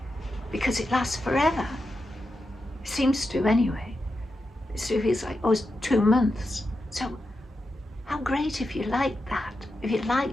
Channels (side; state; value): both; normal; correlation 0.88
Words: because it lasts forever. It seems to anyway. It feels like, oh, it's 2 months. So how great if you like that. If you